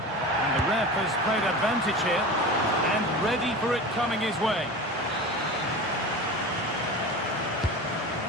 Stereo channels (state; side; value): normal; both; correlation 0.31